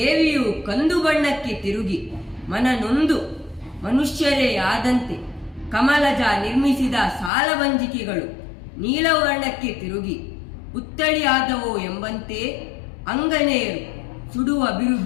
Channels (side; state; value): right; drops out; at 7.3 s